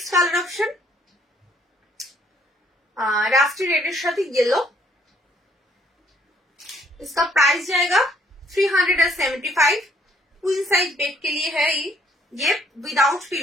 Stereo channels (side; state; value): both; normal; correlation 0.65